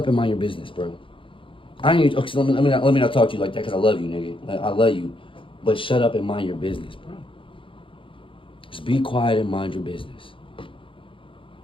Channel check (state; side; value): late; right; 0.25 ms